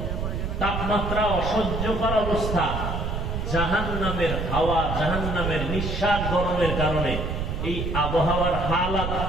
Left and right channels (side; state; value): right; noise; rumble, 2 dB below the sound